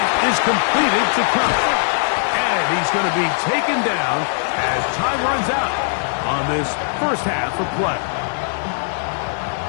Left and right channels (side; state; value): right; silent; digital silence